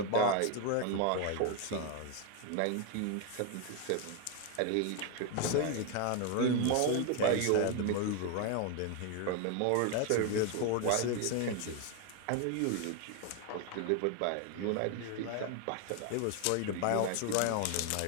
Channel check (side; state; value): both; different; correlation 0.01